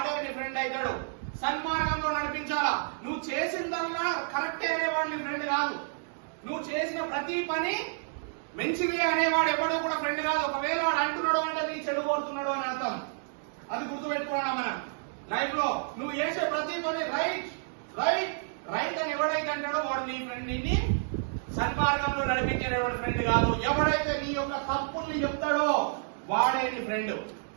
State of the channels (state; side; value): silent; left; digital silence